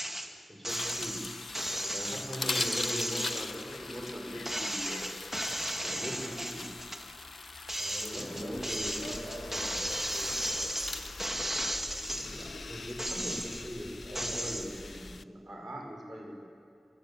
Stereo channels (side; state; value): both; normal; correlation 0.91